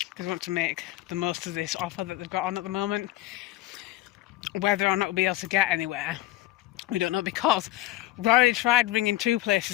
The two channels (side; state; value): right; quieter; 16.6 dB